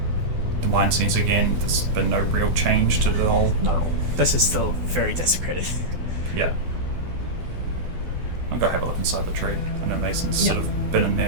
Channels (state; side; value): late; left; 12 ms